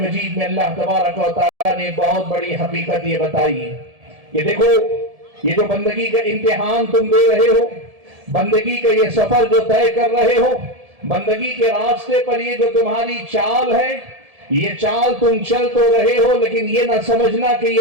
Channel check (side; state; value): left; late; 1.7 ms